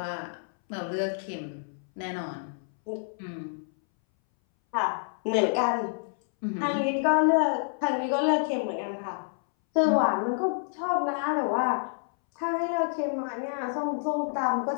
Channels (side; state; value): right; silent; 59 dB below the other